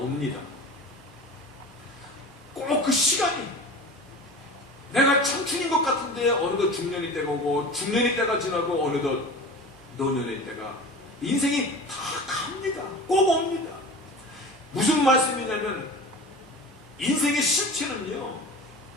꼭 그 시간이 내가 청춘인 것 같은데 어느덧 중년이 때가 오고 중년이 때가 지나고 어느덧 노년의 때가 인생이 다 갑니다. 꼭 옵니다. 무슨 말씀이냐면 인생의 실체는요,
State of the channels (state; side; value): normal; both; correlation 0.35